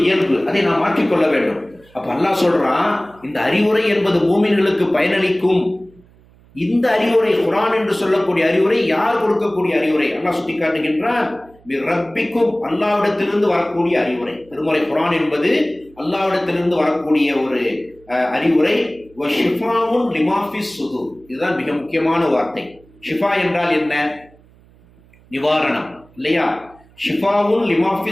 இயல்பு, அதை நாம் மாற்றிக்கொள்ள வேண்டும். அப்ப அல்லாஹ் சொல்றான், இந்த அறிவுரை என்பது மூமின்களுக்கு பயனளிக்கும். இந்த அறிவுரை குர்ஆன் என்று சொல்லக்கூடிய அறிவுரை யார் கொடுக்கக்கூடிய அறிவுரை? அல்லாஹ் சுட்டி காட்டுகின்றான், ரப்பிக்கும், அல்லாஹ்விடத்திலிருந்து வரக்கூடிய அறிவுரை. திருமறை குர்ஆன் என்பது அல்லாஹ்விடத்திலிருந்து வரக்கூடிய ஒரு அறிவுரை. ஷிஃபாஉன் லிமா ஃபிஸ் சுதூர், இதுதான் மிக முக்கியமான வார்த்தை. ஷிஃபா என்றால் என்ன? நிவாரணம் இல்லையா? ஷிஃபாவுன் லிமா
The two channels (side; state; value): right; noise; hum, 28 dB below the sound